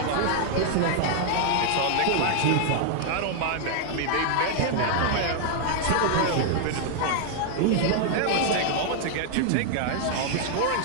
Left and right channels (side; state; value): both; different; correlation 0.00